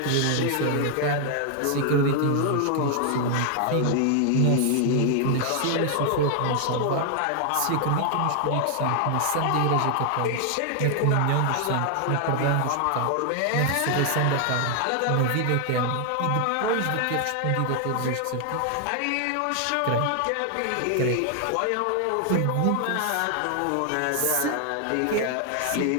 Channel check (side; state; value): both; different; correlation 0.00